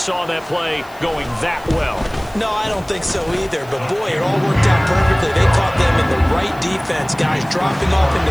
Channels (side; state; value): left; noise; hiss, 25 dB below the sound